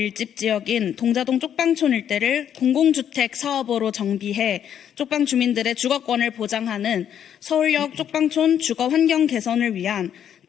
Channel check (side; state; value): right; quieter; 9.4 dB